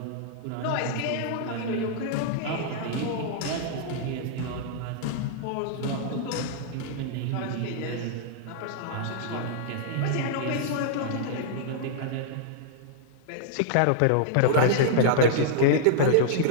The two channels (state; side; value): different; both; correlation -0.01